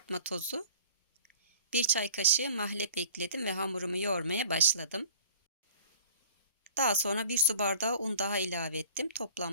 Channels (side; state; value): both; inverted; correlation -0.48